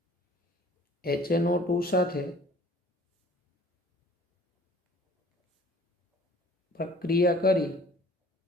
HNO2 સાથે પ્રક્રિયા કરી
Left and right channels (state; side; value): normal; both; correlation 0.52